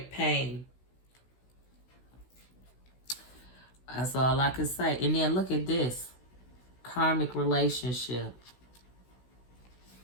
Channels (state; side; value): late; right; 16 ms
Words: pain. That's all I can say. And then look at this. Karmic relationship.